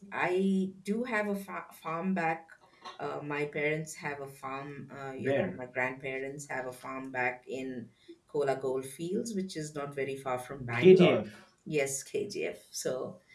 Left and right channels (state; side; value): identical; both; correlation 1.00